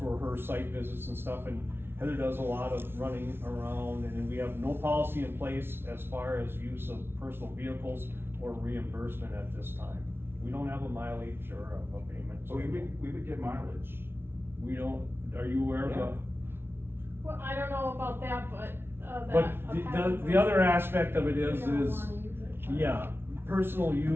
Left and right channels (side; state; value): left; late; 0.11 ms